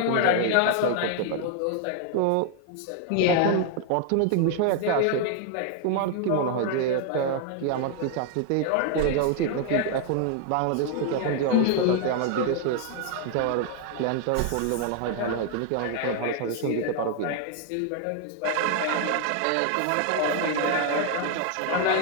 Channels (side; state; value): both; different; correlation 0.00